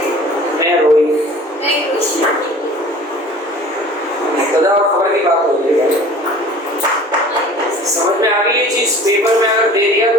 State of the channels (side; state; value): both; normal; correlation 0.45